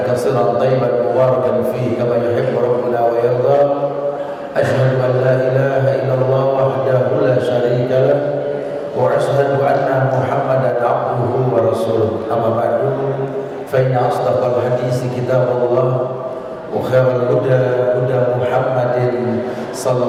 katsiran thayyiban mubarakan fihi kama yuhibbu rabbuna wa yarda. Asyhadu an la ilaha illallah wahdahu la syarika lah wa asyhadu anna Muhammadan abduhu wa rasuluh. Amma ba'du, fa inna asdaqal hadits kitabullah wa khairal huda huda Muhammadin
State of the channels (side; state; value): both; identical; correlation 1.00